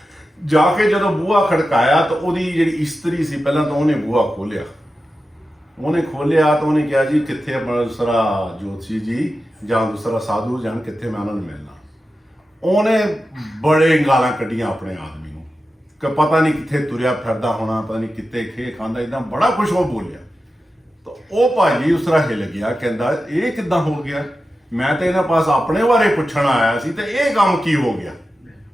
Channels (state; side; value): normal; both; correlation 0.92